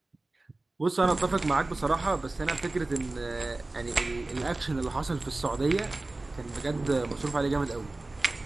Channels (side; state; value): left; quieter; 3.0 dB